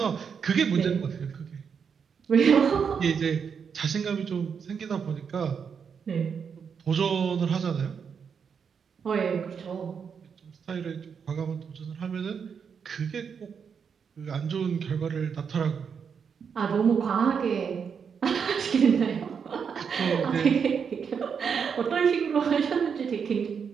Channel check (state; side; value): quieter; left; 6.6 dB